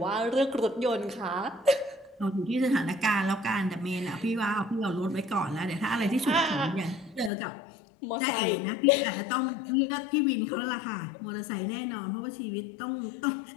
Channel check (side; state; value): right; drops out; at 7.3 s